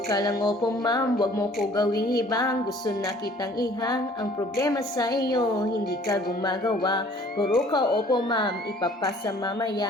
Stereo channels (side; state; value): both; normal; correlation 0.54